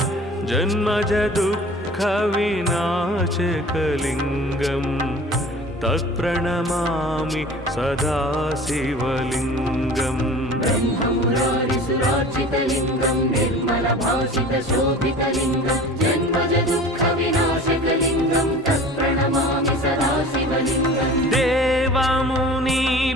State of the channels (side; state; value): both; normal; correlation 0.41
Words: जन्मजदुःखविनाशकलिङ्गं तत्प्रणमामि सदा शिवलिङ्गम् ब्रह्ममुरारिसुरार्चितलिङ्गं निर्मलभासितशोभितलिङ्गं जन्मजदुःखविनाशकलिङ्गं तत्प्रणमामि सदा शिवलिङ्गम्